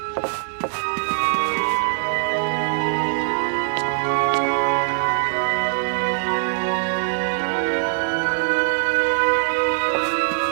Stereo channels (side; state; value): left; silent; digital silence